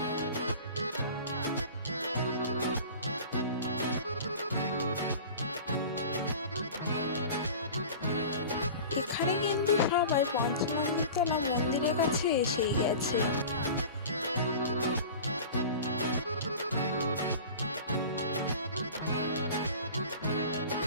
এখানে কিন্তু সবাই পঞ্চমন্দিরতলা মন্দিরের কাছে এসেই গেছে।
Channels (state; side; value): inverted; both; correlation -0.37